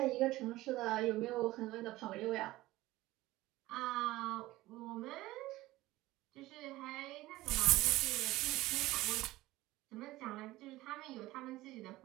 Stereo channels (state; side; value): quieter; left; 17.6 dB